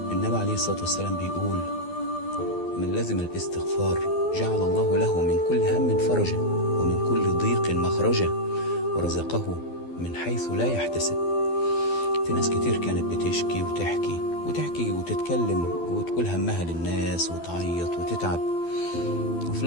النبي عليه الصلاة والسلام بيقول: من لزم الاستغفار جعل الله له من كل هم فرجا، ومن كل ضيق مخرجا، ورزقه من حيث لا يحتسب. في ناس كتير كانت بتشكي وتحكي وتتكلم وتقول همها للناس وتعيط وتتعب، وفي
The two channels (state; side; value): late; right; 12 ms